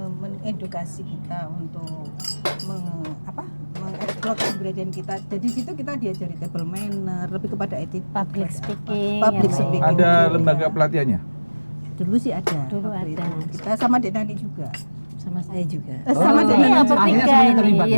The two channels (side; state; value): both; inverted; correlation -1.00